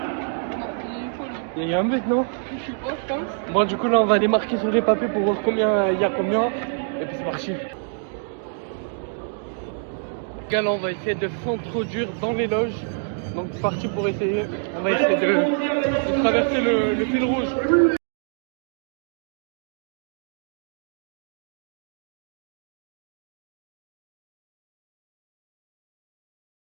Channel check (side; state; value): left; silent; digital silence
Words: Il y a un but non? Je sais pas, je pense. Bon du coup là on va aller marquer sur les papiers pour voir combien il y a combien. Et puis c'est parti. Les gars là on va essayer de s'introduire dans les loges. Donc c'est parti pour essayer. On va essayer de traverser le fil rouge.